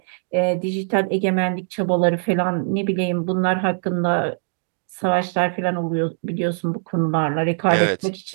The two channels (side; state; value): left; silent; digital silence